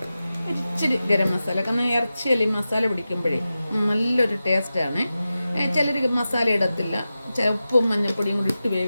ഇച്ചിരി ഗരം മസാല. കാരണം ഇറച്ചിയല്ല ഈ മസാല പിടിക്കുമ്പോഴേ നല്ലൊരു ടേസ്റ്റാണ്. ചിലർ മസാല ഇടത്തില്ല, ഉപ്പും മഞ്ഞൾപ്പൊടിയും കൂടി ഇട്ട്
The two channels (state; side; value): inverted; both; correlation -0.93